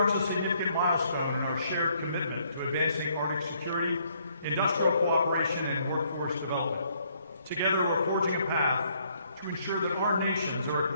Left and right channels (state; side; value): inverted; both; correlation -0.68